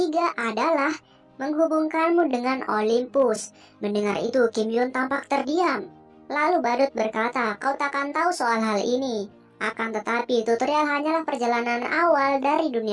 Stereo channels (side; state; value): both; identical; correlation 1.00